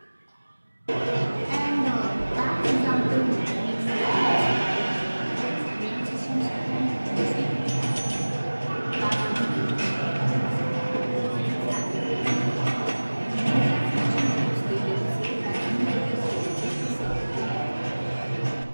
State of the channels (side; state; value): both; inverted; correlation -1.00